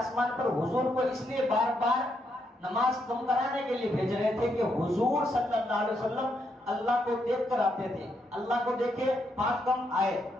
پر حضور کو اس لیے بار بار نماز کم کرانے کے لیے بھیج رہے تھے کہ حضور صلی اللہ علیہ وسلم اللہ کو دیکھ کر آتے تھے. اللہ کو دیکھے 5 کم آئے،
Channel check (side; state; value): both; normal; correlation 0.78